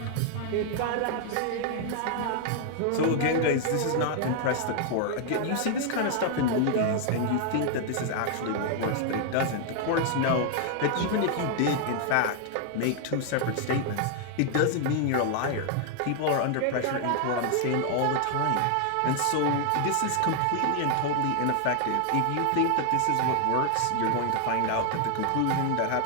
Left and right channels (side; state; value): both; different; correlation 0.00